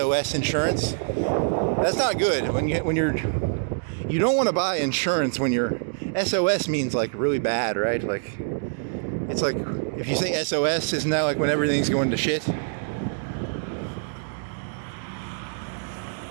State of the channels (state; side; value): silent; left; digital silence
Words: insurance. That's not good you don't want to buy insurance when you're SOS means like really bad, right? Like it's like if you say SOS, isn't that like when everything's going to shit?